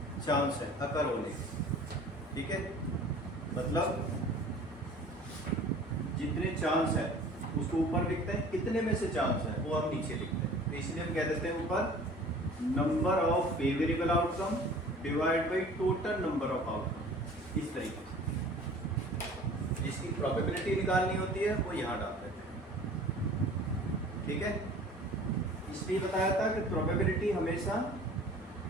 चांस है अकर होने के, ठीक है। मतलब जितने चांस है उसको ऊपर लिखते हैं, कितने में से चांस है वो हम नीचे लिखते हैं। तो इसलिए हम कह देते हैं ऊपर number of favourable outcome divide by total number of outcome. इस तरीके से जिसकी प्रोबेबिलिटी निकालनी होती है वो यहाँ डाल देते हैं, ठीक है। इसलिए बताया था कि प्रोबेबिलिटी हमेशा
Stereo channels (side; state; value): both; normal; correlation 0.46